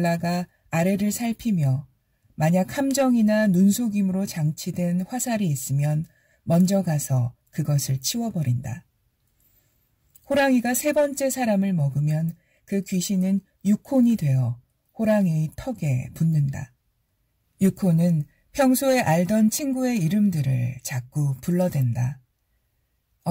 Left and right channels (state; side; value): identical; both; correlation 1.00